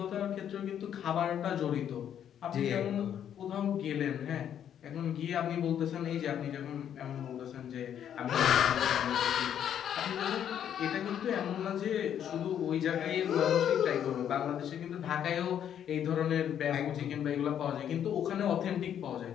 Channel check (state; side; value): quieter; right; 9.5 dB